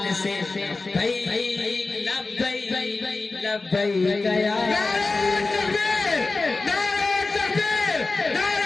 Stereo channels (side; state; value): right; quieter; 3.6 dB